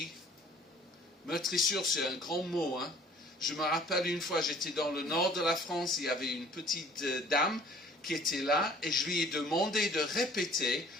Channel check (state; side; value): normal; both; correlation 0.53